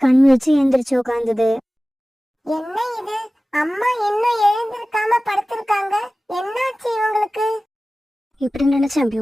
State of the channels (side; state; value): both; normal; correlation 0.97